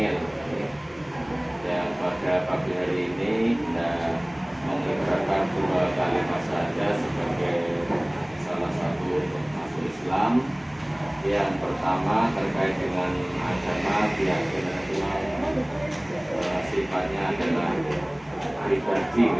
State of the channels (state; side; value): noise; left; rumble, 30 dB below the sound